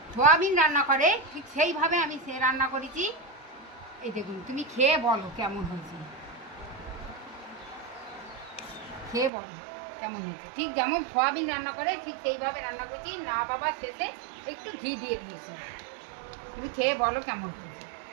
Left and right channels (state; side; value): drops out; left; at 9.3 s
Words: সোয়াবিন রান্না করে ঠিক সেইভাবে আমি সে রান্না করেছি। এই দেখুন, তুমি খেয়ে বলো কেমন হয়েছে, খেয়ে বলো কেমন হয়েছে। ঠিক যেমন সোয়াবিন রান্না করে ঠিক সেইভাবে রান্না করেছি। না বাবা, শেষে একটু ঘি দিয়ে দিয়েছি। তুমি খেয়ে বলো কেমন হয়েছে।